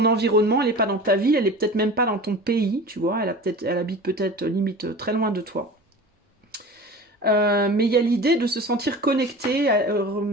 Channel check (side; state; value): both; normal; correlation 0.36